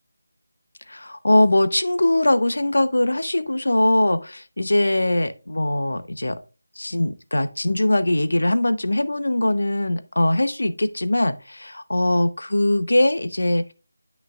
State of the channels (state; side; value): inverted; both; correlation -0.99